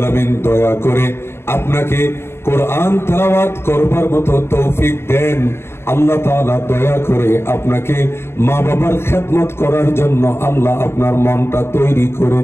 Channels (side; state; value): right; late; 0.12 ms